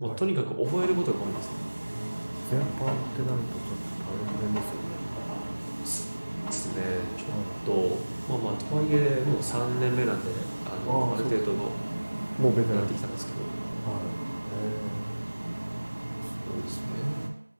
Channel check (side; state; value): both; inverted; correlation -1.00